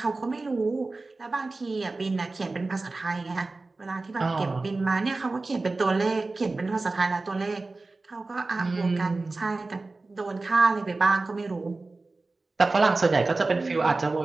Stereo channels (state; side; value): quieter; left; 3.4 dB